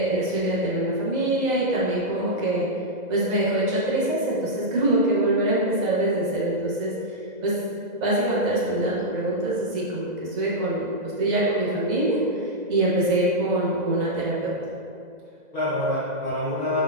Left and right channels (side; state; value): left; late; 2.0 ms